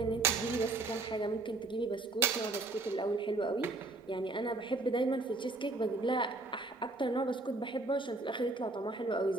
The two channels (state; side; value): quieter; left; 3.2 dB